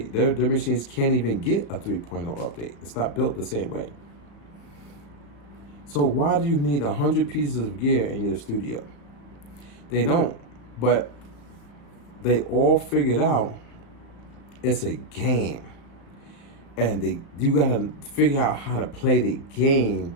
Their machines can't even get a 3.0 update. It's not built the same way. So why do you need 100 pieces of gear in your studio? They don't. But they all figured out it's a game. And you gotta figure out how to play the game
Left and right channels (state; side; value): late; right; 35 ms